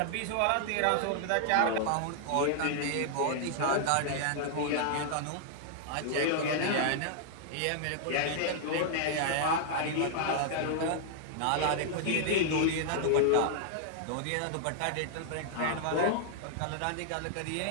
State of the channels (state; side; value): different; both; correlation -0.01